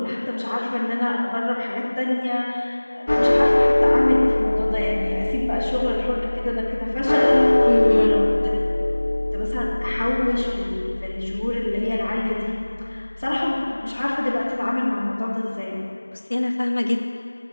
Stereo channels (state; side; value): inverted; both; correlation -1.00